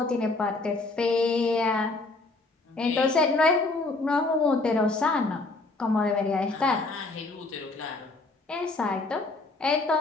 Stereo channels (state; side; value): quieter; right; 3.3 dB